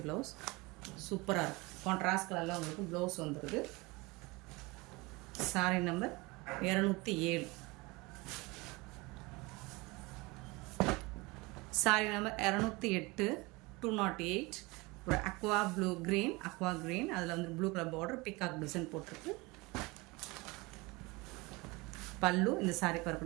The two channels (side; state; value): left; quieter; 24.3 dB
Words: ப்ளவுஸ். சூப்பராக இருக்குது. கான்ட்ராஸ்ட் கலரில் உங்களுக்கு ப்ளவுஸ் வந்துடுது. சாரீ நம்பர் 207. சாரீ நம்பர் 208, 208. ஒரு அக்வா க்ரீன், அதில் வந்து blue colour border, peacock design போட்டிருக்கு. பல்லு, இந்த சாரீக்கு